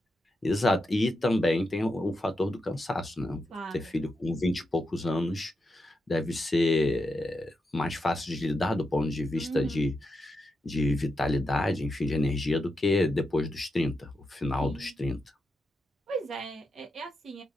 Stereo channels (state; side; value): normal; both; correlation 0.85